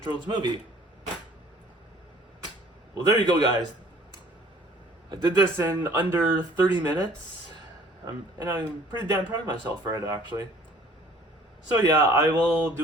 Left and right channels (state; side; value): normal; both; correlation 0.54